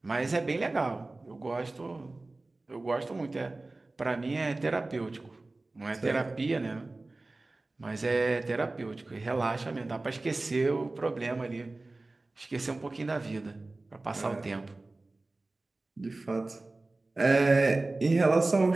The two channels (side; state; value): left; quieter; 3.1 dB